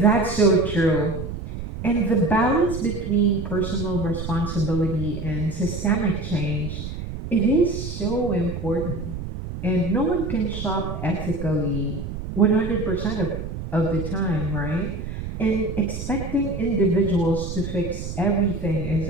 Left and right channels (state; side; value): noise; right; rumble, 7 dB below the sound